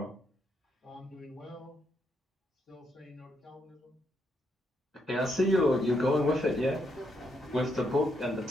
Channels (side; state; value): both; normal; correlation 0.78